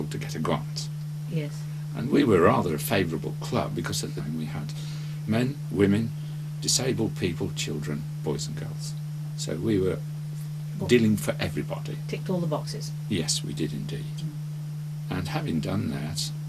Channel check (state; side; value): identical; both; correlation 1.00